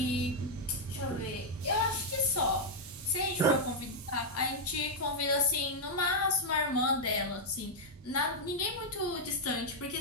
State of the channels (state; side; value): normal; both; correlation -0.03